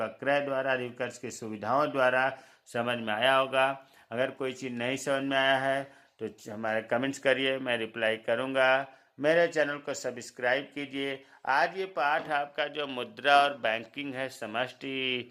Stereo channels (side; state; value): both; identical; correlation 1.00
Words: क्रय द्वारा, अधिविकर्ष की सुविधाओं द्वारा समझ में आया होगा। अगर कोई चीज़ नहीं समझ में आया है तो हमारे कमेंट्स करिए, मैं रिप्लाई करूँगा। मेरे चैनल को सब्सक्राइब कीजिए। आज ये पाठ आपका जो मुद्रा और बैंकिंग है समष्टि